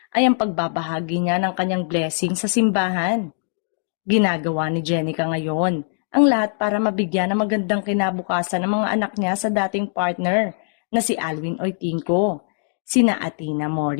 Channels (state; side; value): silent; right; digital silence